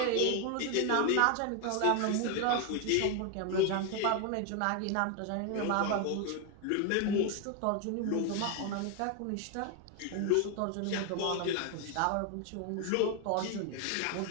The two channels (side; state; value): both; different; correlation 0.01